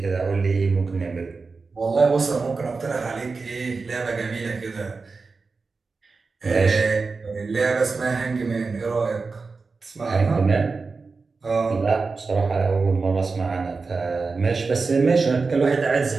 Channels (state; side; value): quieter; left; 4.3 dB